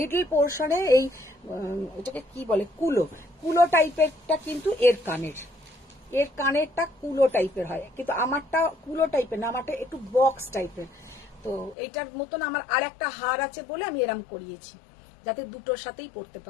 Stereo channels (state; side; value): drops out; right; at 11.8 s